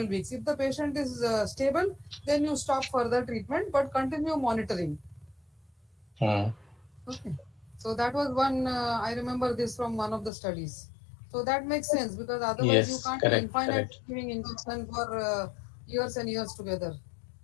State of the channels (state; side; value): drops out; right; at 10.3 s